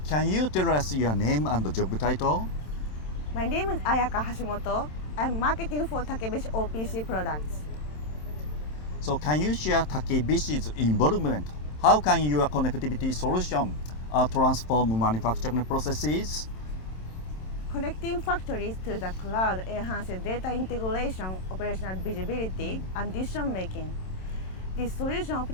Can you tell us your name and job title? My name is Ayaka Hashimoto. I'm marketing for Takebishi OPC products. So can you share Takebishi's involvement? How can your connectivity solution transform manufacturing processes? Connecting factories to the cloud enhances data integration, operational visibility, and decision making. This solution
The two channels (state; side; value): late; right; 27 ms